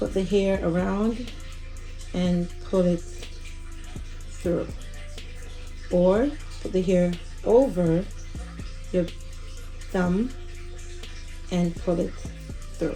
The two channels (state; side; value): identical; both; correlation 1.00